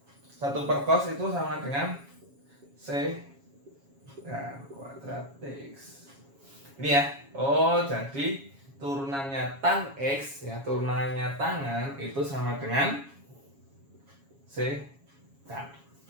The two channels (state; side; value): late; left; 7.3 ms